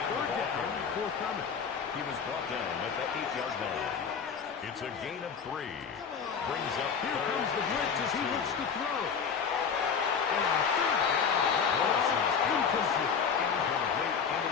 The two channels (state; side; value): quieter; right; 6.4 dB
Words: down, forthcoming. He was brought down at the 8-yard line. It's a gain of 3. Brings up Here 3rd comes the blitz as he and 2. looks to throw. And on 3rd down, incomplete. Incomplete in